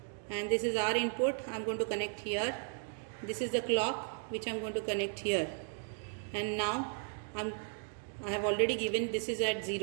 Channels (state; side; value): silent; left; 54 dB below the other